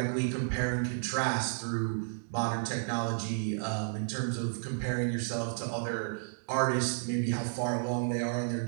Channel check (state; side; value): silent; left; digital silence